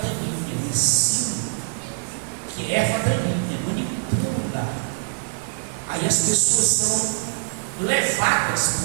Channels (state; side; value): silent; left; digital silence